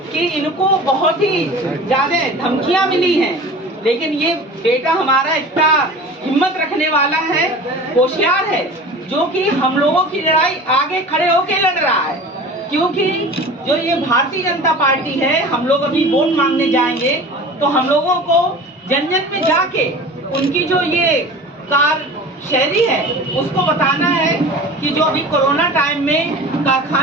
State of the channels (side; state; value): both; normal; correlation 0.38